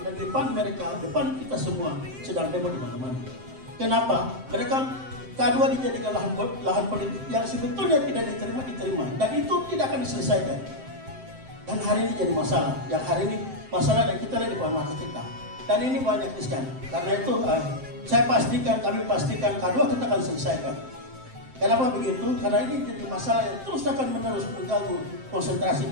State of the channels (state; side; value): late; left; 7.7 ms